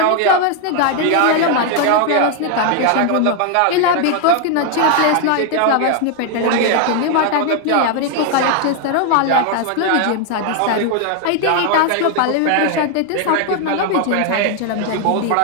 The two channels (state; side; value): different; both; correlation 0.00